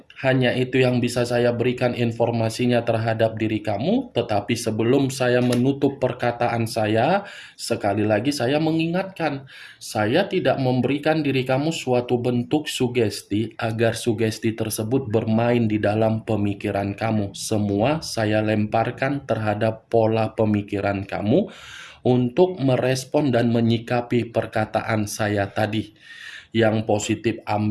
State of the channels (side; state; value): both; identical; correlation 1.00